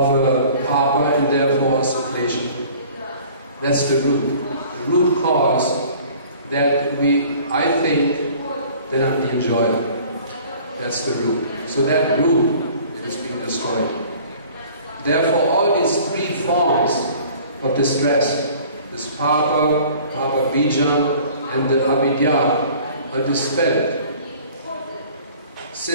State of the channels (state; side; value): inverted; both; correlation -0.49